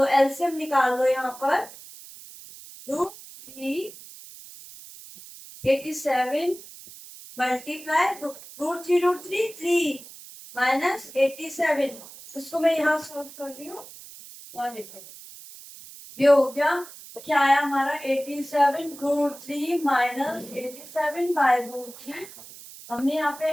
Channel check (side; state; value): right; noise; hiss, 17 dB below the sound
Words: एलसीएम निकाल लो यहाँ पर, √3 87 मल्टीप्लाई √3 3 माइनस 87। इसको मैं यहाँ सॉल्व कर रही हूँ और देखो ये हो गया, क्या आया हमारा 87√3 माइनस 87/√3। हमने यहाँ पे